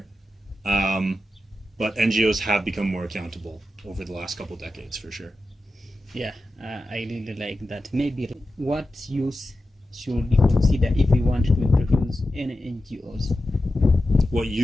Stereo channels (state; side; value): normal; both; correlation 0.91